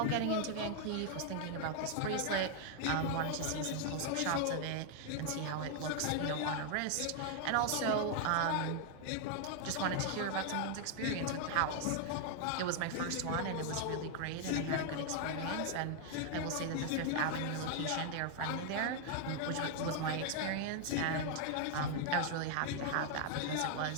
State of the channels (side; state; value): both; different; correlation 0.00